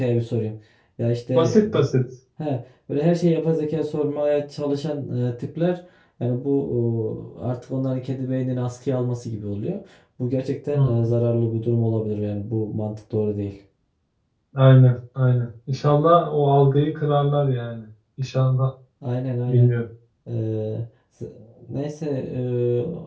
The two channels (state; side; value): identical; both; correlation 1.00